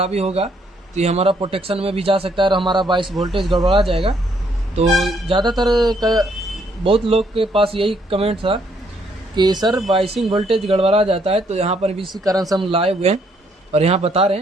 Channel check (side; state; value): both; normal; correlation 0.70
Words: होगा तो ये हमारा प्रोटेक्शन में भी जा सकता है, और हमारा 22 वोल्टेज गड़बड़ा जाएगा। तो ज़्यादातर बहुत लोग के पास यही कमेंट था कि सर बाइसिंग वोल्टेज गड़बड़ा जाता है, तो यहाँ पर भी इसी कारण से हम लाए हुए हैं और यहाँ बता रहे